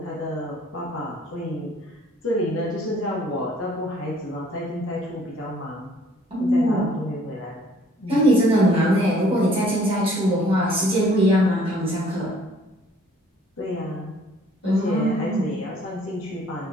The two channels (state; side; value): normal; both; correlation 0.58